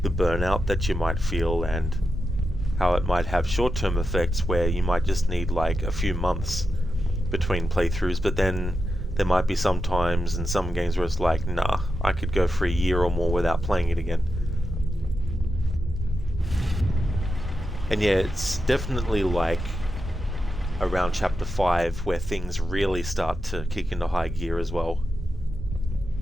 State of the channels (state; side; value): normal; both; correlation 0.88